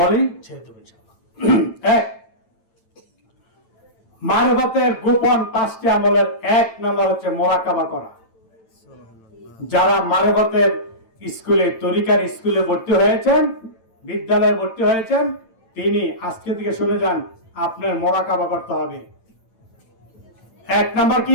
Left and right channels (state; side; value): late; right; 8.9 ms